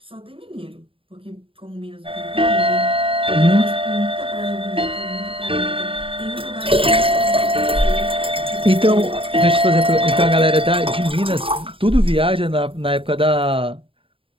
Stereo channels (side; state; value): left; late; 0.26 ms